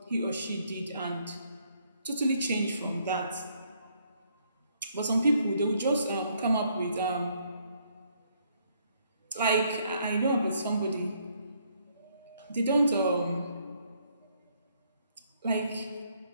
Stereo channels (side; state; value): both; inverted; correlation -0.69